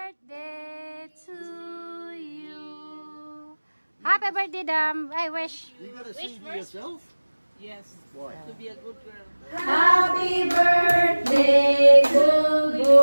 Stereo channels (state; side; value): inverted; both; correlation -1.00